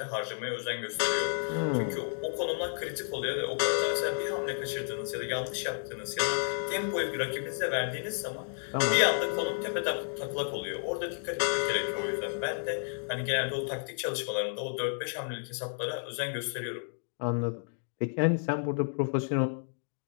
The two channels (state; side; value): silent; right; digital silence